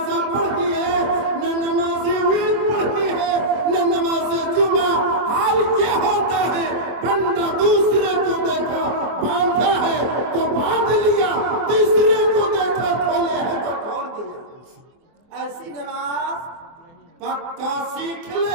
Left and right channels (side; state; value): left; late; 24 ms